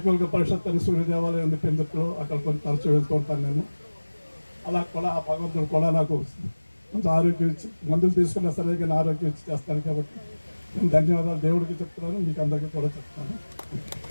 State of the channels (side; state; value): both; inverted; correlation -1.00